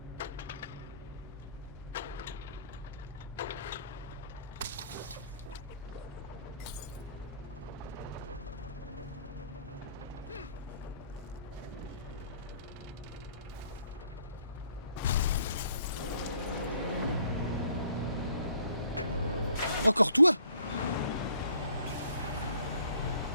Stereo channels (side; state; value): both; inverted; correlation -0.59